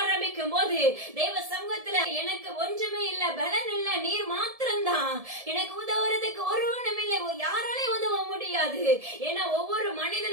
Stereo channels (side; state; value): left; late; 1.7 ms